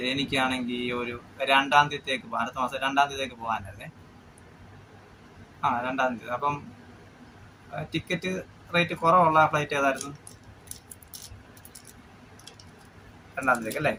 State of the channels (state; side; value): identical; both; correlation 1.00